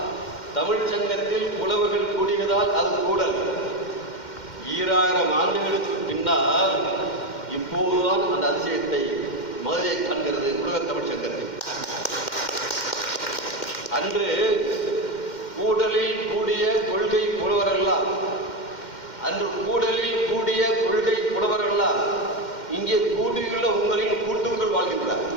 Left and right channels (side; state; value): right; late; 2.1 ms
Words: தமிழ் சங்கத்தில் புலவர்கள் கூடியதால் அது கூடல். 2000 ஆண்டுகளுக்கு பின்னால் இப்போதுதான் அந்த அதிசயத்தை மதுரை காண்கிறது உலக தமிழ் சங்கத்தில். அன்று கூடலில் கூடிய கொள்கை புலவரெல்லாம், அன்று கூடலில் கூடிய கொள்கை புலவரெல்லாம் இங்கே கூடியுள்ள உங்களின் கூட்டுக்குள் வாழ்கின்றார்.